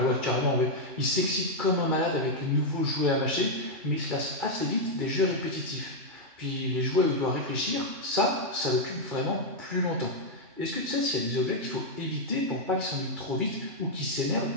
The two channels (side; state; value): left; late; 2.3 ms